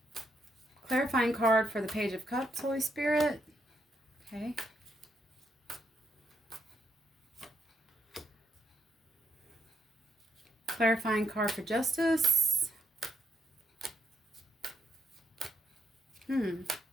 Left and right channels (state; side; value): normal; both; correlation 0.76